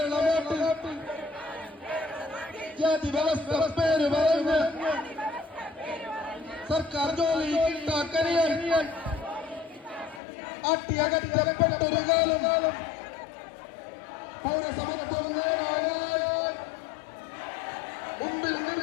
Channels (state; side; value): drops out; right; at 10.2 s